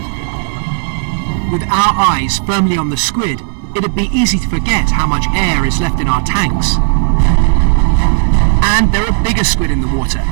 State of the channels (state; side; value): silent; left; digital silence